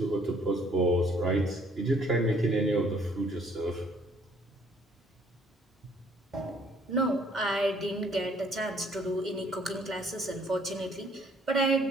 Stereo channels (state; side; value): normal; both; correlation 0.62